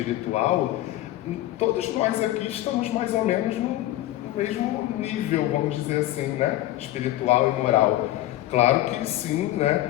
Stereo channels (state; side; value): quieter; right; 15.1 dB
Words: todos nós aqui estamos mais ou menos no mesmo nível, vamos dizer assim, né? Espiritual e moral. Claro que sim,